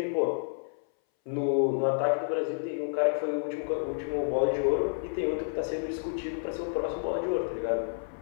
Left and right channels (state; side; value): silent; right; 58 dB below the other